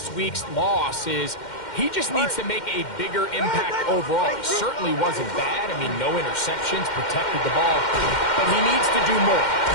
week's loss is he just needs to make a bigger impact overall. He certainly wasn't bad. I mean, no interceptions, protected the ball. But he needs to do more.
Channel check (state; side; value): late; right; 2.1 ms